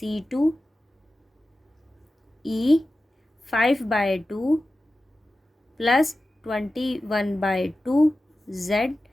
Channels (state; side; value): normal; both; correlation 0.94